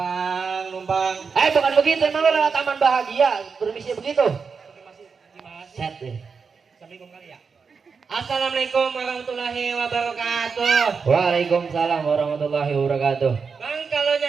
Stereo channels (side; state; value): left; quieter; 5.4 dB